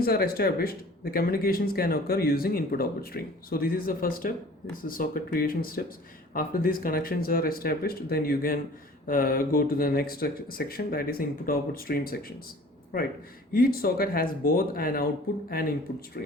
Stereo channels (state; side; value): normal; both; correlation 0.47